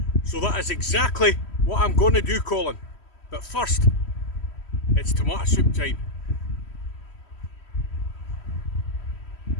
So that is exactly what I'm going to do, Colin. But first, it's tomato soup time.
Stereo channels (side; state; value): right; late; 3.1 ms